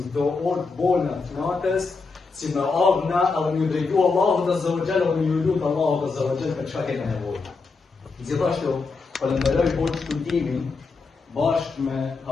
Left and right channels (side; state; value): right; quieter; 4.3 dB